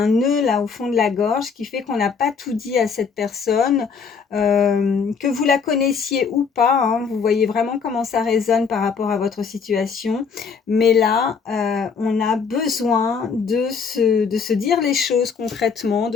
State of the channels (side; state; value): right; quieter; 5.8 dB